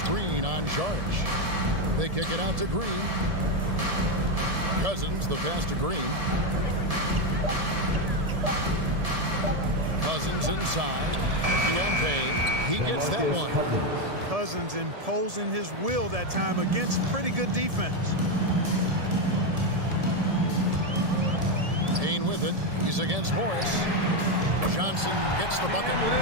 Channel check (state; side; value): late; left; 1.7 ms